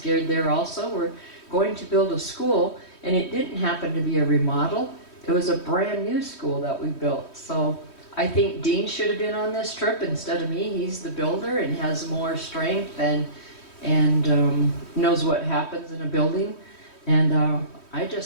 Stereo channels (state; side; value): late; right; 3.1 ms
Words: there also. We're going to build a school, and it didn't happen to be a remodel. It was a brand new school that we built. So I think Dean should have been on this trip instead of me. He's the builder and has more strength and knows what happens in a building. And I